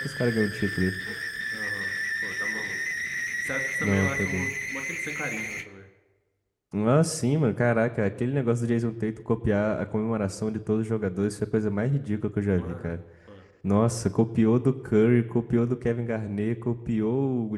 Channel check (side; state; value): both; identical; correlation 1.00